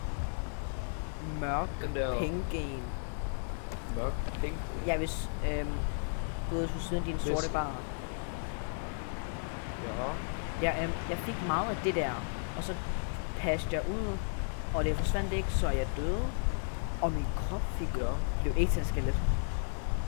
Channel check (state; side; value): silent; right; digital silence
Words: mørk penge-gen. Mørk penge? Ja, hvis du ved, du sidder i din sorte bar. Ja. Jeg fik meget af det der, og så passede jeg ud, og det forsvandt ikke, så jeg døde. Og min krop blev ikke til en skelet.